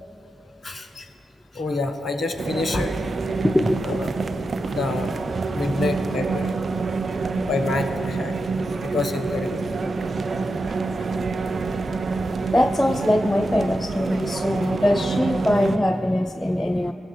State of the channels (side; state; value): both; normal; correlation 0.89